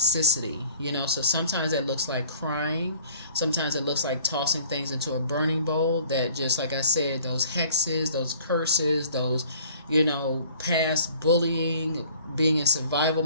So sometimes it looks like crying. Sometimes it looks like tossing things into a burning bowl that, just like I said, those hexes, those curses, those, past bullying, being in survival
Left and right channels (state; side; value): inverted; both; correlation -0.53